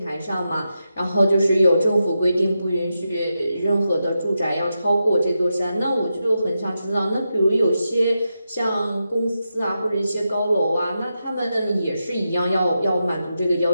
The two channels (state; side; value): inverted; both; correlation -0.88